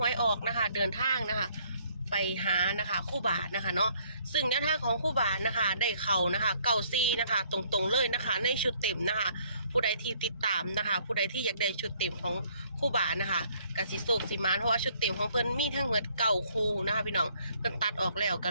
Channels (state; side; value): inverted; both; correlation -0.64